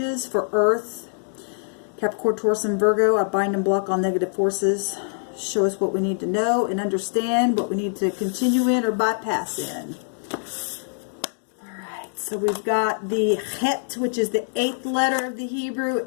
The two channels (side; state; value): right; silent; digital silence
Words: for Earth, Capricorn, Taurus, and Virgo. I bind and block all negative forces. Show us what we need to know and understand, what we need to continue in or bypass in. Alright, so we've got the Het, which is the 8th letter of the Hebrew,